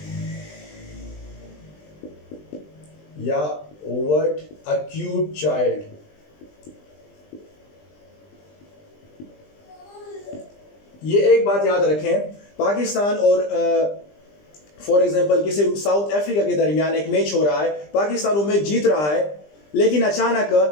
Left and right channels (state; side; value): late; right; 20 ms